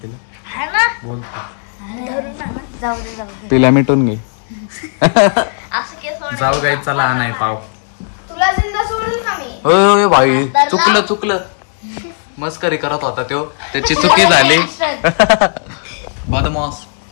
तिला. हा ना. बोलतो जाऊ दे. तिला मिटून घे. असं केस जाऊ गाई चला आणाय पाव. तुला जिंदा सोडेल का मी. होय भाई चुकलं. मस्करी करत होता त्यो, त्याची चुकी झाली. बदमाश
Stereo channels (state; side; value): silent; right; digital silence